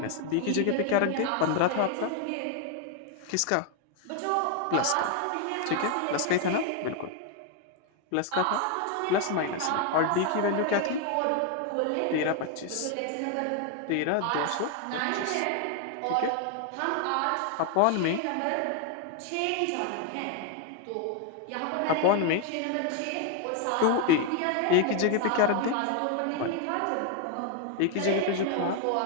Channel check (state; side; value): different; both; correlation 0.00